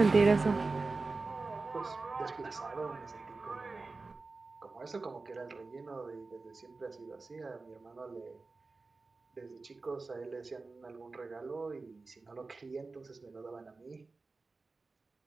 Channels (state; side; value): quieter; left; 3.8 dB